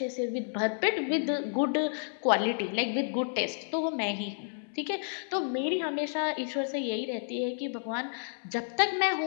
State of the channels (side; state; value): right; silent; digital silence